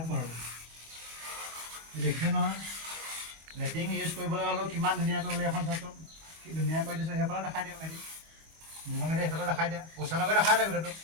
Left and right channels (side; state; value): left; late; 25 ms